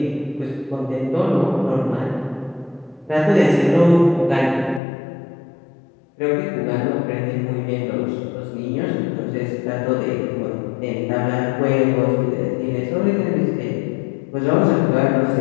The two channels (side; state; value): right; drops out; at 4.8 s